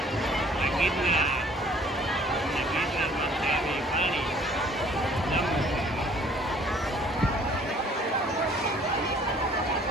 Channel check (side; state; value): both; normal; correlation 0.56